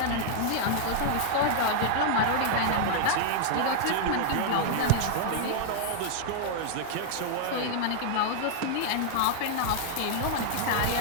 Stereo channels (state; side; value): different; both; correlation -0.01